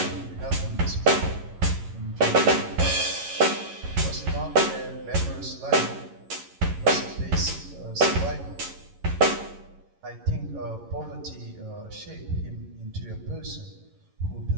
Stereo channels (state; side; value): late; left; 11 ms